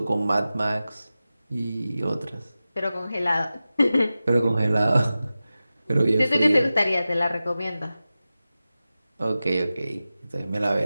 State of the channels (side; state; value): both; inverted; correlation -0.95